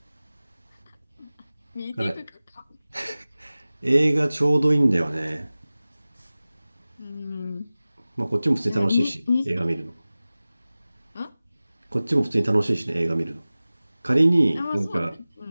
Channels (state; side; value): inverted; both; correlation -0.98